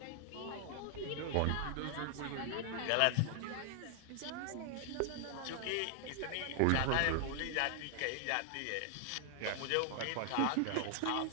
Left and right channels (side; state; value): both; different; correlation 0.00